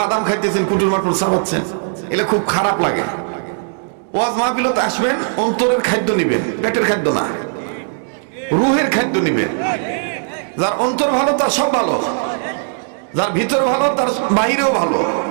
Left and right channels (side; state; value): left; silent; digital silence